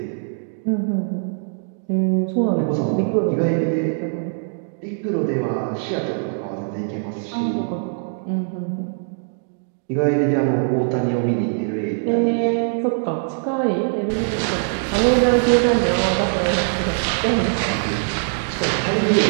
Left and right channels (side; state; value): left; silent; digital silence